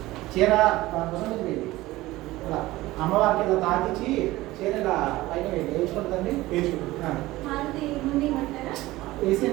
చీర ఇలా అమ్మవారికి ఇలా తాకిచ్చి చీర ఇలా పైన వేయించుకుంటుందండి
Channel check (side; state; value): left; quieter; 18.0 dB